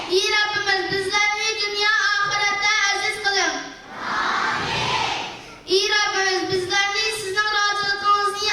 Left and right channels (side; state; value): both; identical; correlation 1.00